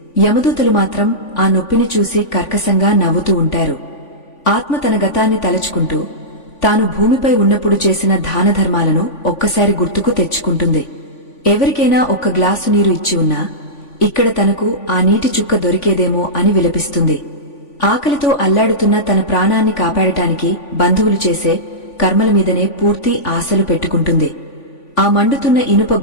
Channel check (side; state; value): right; late; 3.5 ms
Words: యమదూతలు మాత్రం ఆ నొప్పిని చూసి కర్కశంగా నవ్వుతూ ఉంటారు. ఆత్మ తన గతాన్ని తలచుకుంటూ తాను భూమిపై ఉన్నప్పుడు చేసిన దానధర్మాలను ఒక్కసారి గుర్తుకు తెచ్చుకుంటుంది. ఎవరికైనా ఒక్క గ్లాసు నీరు ఇచ్చి ఉన్నా ఇక్కడ తనకు ఆ నీటి చుక్క దొరికేదేమో అని విలపిస్తుంది. ఆకలితో అల్లాడుతున్న తన ప్రాణాన్ని కాపాడటానికి బంధువులు చేసే కర్మల మీదనే పూర్తి ఆశలు పెట్టుకుంటుంది. ఆ మండుతున్న ఇనుప